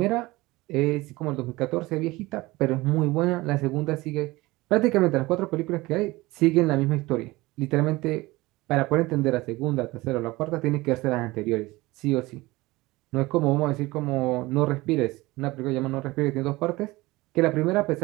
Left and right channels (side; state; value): left; quieter; 20.6 dB